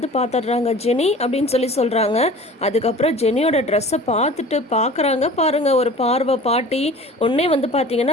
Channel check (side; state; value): both; normal; correlation 0.42